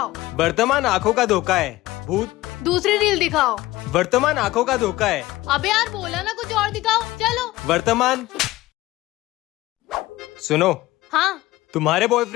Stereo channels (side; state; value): right; quieter; 17.8 dB